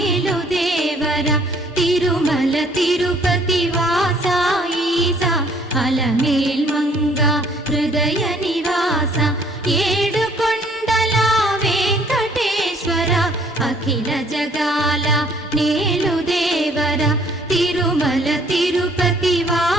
దేవర తిరుమల తిరుపతి వాస ఈసా అలమేల్ మంగ హృదయ నివాస ఏడు కొండల వెంకటేశ్వర అఖిల జగాల నేలు దేవర తిరుమల తిరుపతి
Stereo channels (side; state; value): both; normal; correlation 0.60